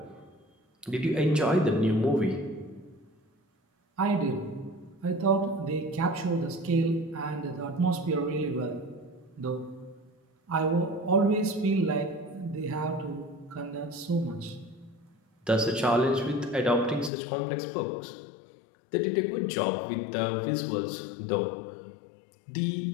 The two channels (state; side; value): drops out; right; at 17.1 s